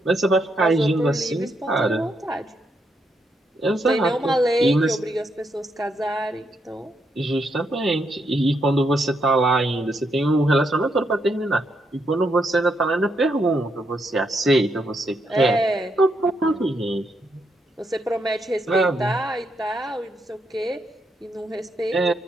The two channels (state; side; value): normal; both; correlation 0.78